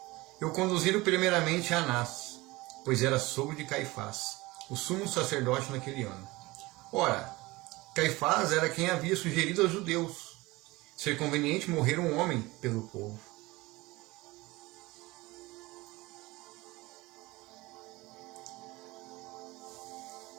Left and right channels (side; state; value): left; quieter; 21.2 dB